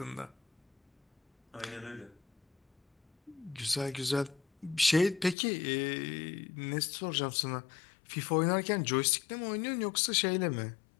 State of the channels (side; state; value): right; drops out; at 5.4 s